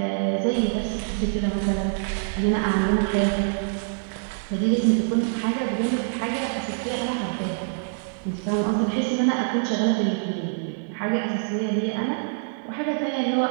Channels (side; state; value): left; silent; 62 dB below the other